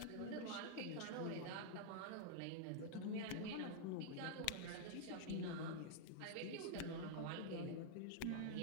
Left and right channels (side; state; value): both; different; correlation -0.01